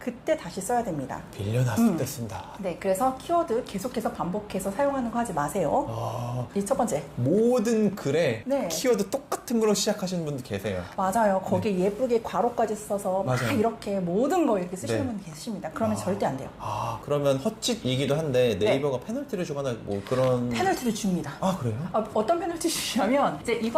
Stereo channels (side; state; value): both; identical; correlation 1.00